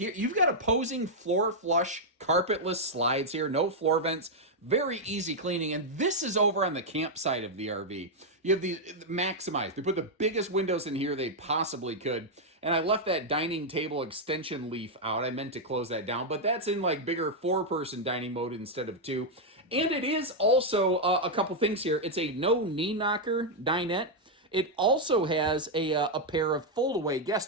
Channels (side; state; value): both; normal; correlation -0.02